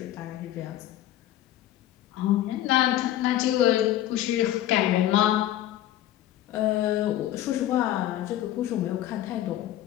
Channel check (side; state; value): right; quieter; 13.2 dB